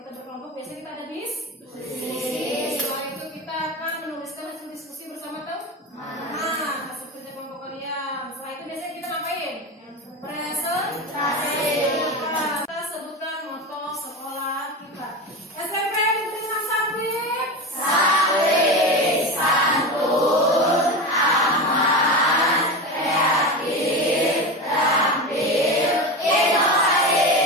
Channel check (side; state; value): both; normal; correlation 0.23